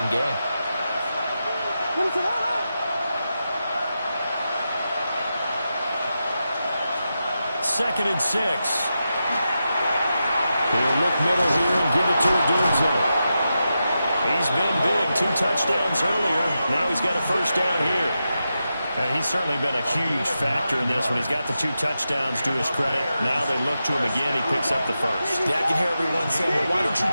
game. Second and 6. He'll look middle here and give it to Odunze. He's been big. 2 touchdowns earlier. Now he's got a first down here. He's certainly been a huge factor in this when he's got the 2 touchdowns to his credit. Now they look to him again. He picks up the first. Yeah, I can hear everyone saying, well, why don't you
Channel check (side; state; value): both; inverted; correlation -0.89